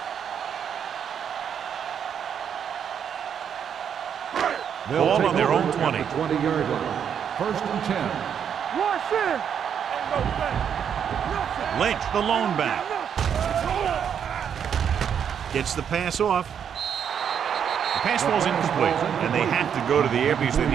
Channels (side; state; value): left; quieter; 8.1 dB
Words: Ball on their own 20. 20-yard line. First and 10. Rush in. Lynch, the lone back. Gets the pass off. The pass falls incomplete, and they have to go to the air because they